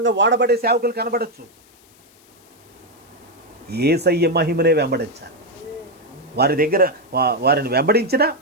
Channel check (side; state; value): left; noise; hiss, 29 dB below the sound